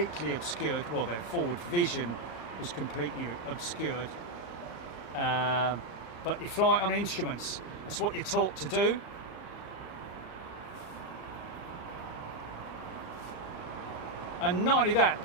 obscured. Well, their forward vision was completely obscured. But you fly on instruments. That's what you're taught to do. And not only that,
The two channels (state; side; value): late; right; 35 ms